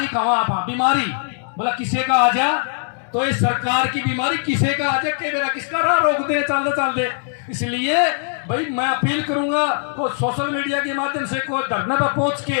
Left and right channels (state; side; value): silent; right; 63 dB below the other